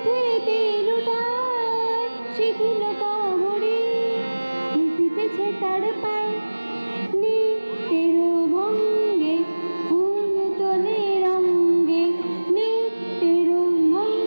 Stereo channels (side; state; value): both; inverted; correlation -1.00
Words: লুটায় সেগুলো কবরি লুটিতেছে তার পায় নিত্যের ভঙ্গে ফুল তোলে রঙ্গে নিত্যের